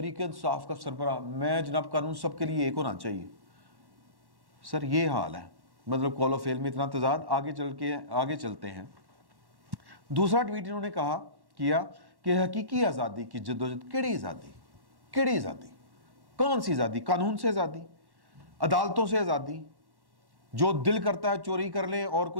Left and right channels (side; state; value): left; late; 1.1 ms